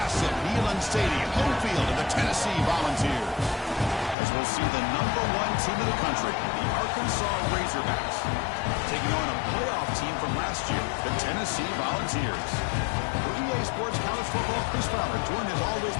Neyland Stadium, home field of the Tennessee Volunteers. As we'll see the number 1 team in the country, the Arkansas Razorbacks, taking on a playoff team from last year, the Tennessee Volunteers. For EA Sports College Football, Chris Fowler, joined as always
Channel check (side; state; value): right; drops out; at 4.2 s